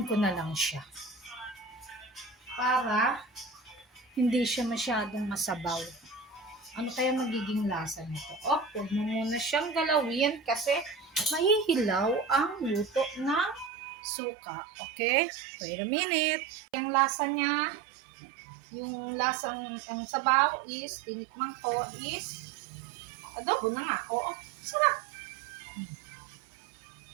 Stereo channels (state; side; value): drops out; left; at 13.7 s